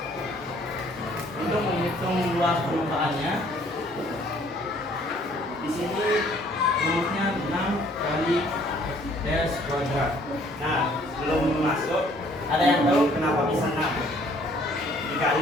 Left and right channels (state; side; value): normal; both; correlation 0.60